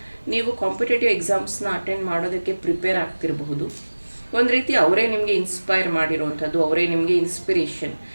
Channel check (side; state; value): both; inverted; correlation -1.00